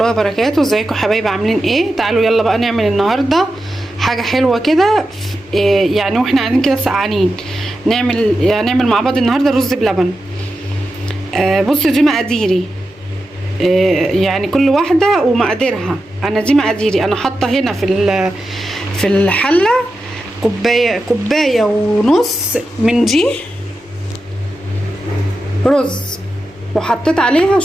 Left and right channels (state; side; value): normal; both; correlation 0.90